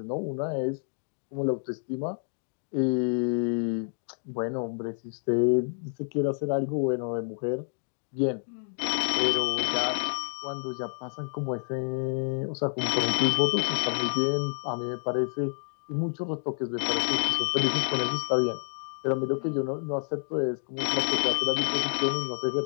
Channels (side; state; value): right; silent; 59 dB below the other